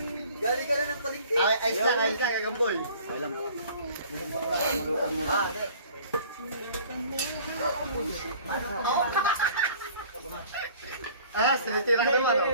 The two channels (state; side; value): inverted; both; correlation -0.50